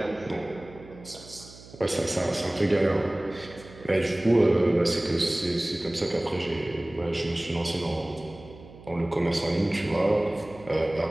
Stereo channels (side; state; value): right; noise; hum, 19 dB below the sound